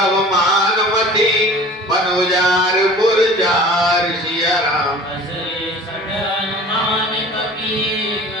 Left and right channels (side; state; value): both; normal; correlation 0.43